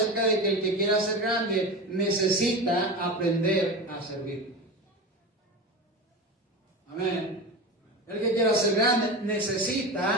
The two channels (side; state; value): both; normal; correlation 0.25